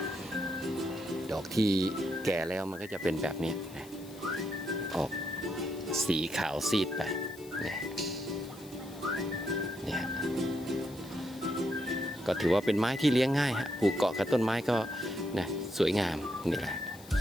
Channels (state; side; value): noise; left; hiss, 20 dB below the sound